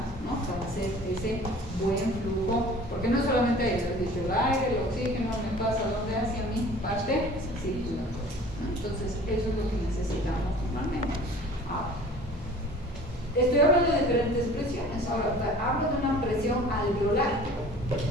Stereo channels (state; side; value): normal; both; correlation 0.46